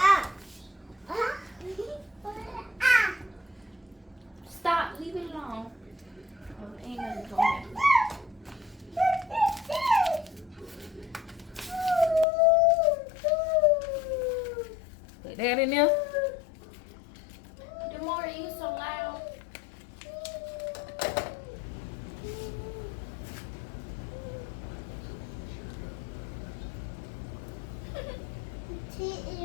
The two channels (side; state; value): right; drops out; at 12.2 s